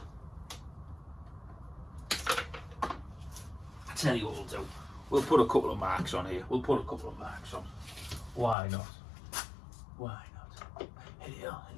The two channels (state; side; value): drops out; right; at 8.6 s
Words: I tell you what we'll do. We'll put a couple of marks on here. Why not? Why not? Here,